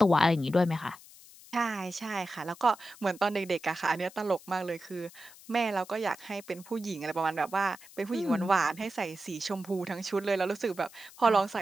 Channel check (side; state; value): left; noise; hiss, 21 dB below the sound